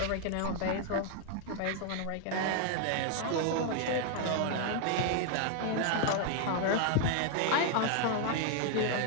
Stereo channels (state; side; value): different; both; correlation 0.00